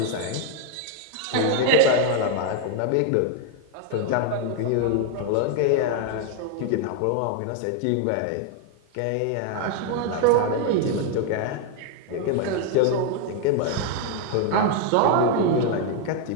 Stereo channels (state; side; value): different; both; correlation 0.01